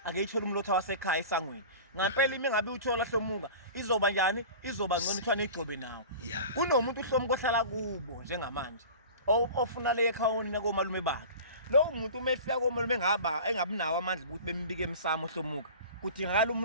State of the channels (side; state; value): both; inverted; correlation -0.37